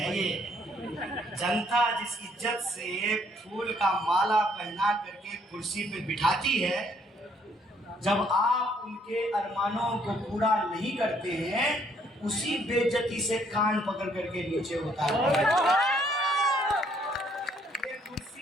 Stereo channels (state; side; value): normal; both; correlation 0.66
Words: ये। जनता जिस इज्जत से फूल का माला पहना करके कुर्सी पे बिठाती है, जब आप उनके अरमानों को पूरा नहीं करते हैं, उसी बेइज्जती से कान पकड़ करके नीचे उतारते हैं। ये